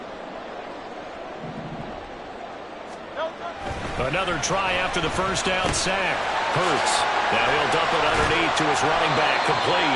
Another try after the first down sack. Hurts. Now he'll dump it underneath to his running back.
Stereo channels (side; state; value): both; identical; correlation 1.00